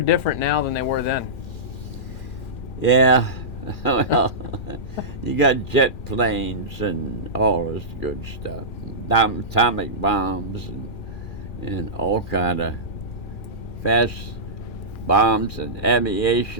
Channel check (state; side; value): late; right; 2.4 ms